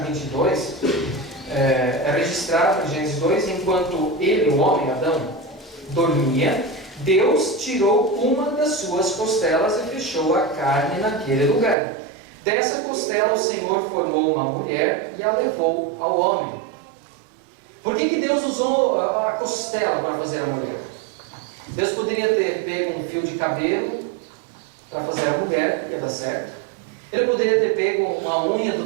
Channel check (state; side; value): drops out; left; at 11.8 s